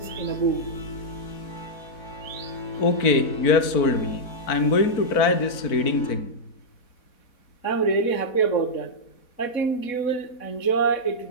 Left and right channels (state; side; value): late; right; 4.1 ms